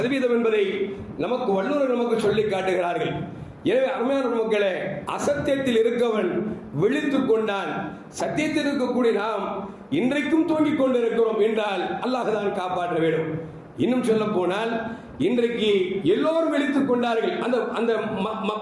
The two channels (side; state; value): both; identical; correlation 1.00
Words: என்பதை நமக்கு வல்லுநர்கள் நமக்கு சொல்லி காட்டுகிறார்கள். எனவே அருமையான மக்களே, அசத்தியத்தில் இருக்கவன் விழித்துக் கொண்டான், சத்தியத்தில் இருக்கக்கூடிய நாம் இன்றைக்கும் தூங்கிக் கொண்டிருக்கிறோம் என்றால் அல்லாஹ் தான் காப்பாற்ற வேண்டும். இன்னும் சொல்ல போனால் இன்றைக்கு எல்லோரும் விழித்துக் கொண்டார்கள். அந்த